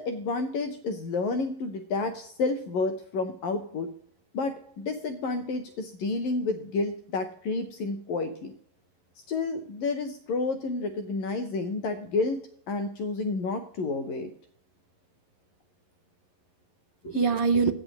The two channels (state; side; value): late; right; 11 ms